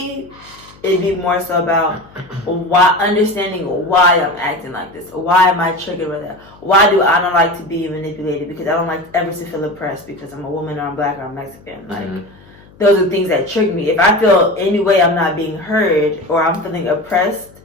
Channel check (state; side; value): noise; left; hum, 25 dB below the sound